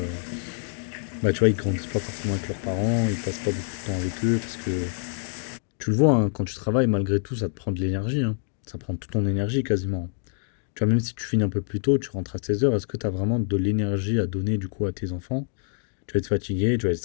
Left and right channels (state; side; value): silent; right; digital silence